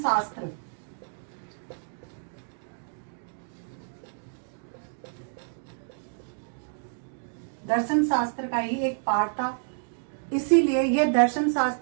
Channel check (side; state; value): left; silent; digital silence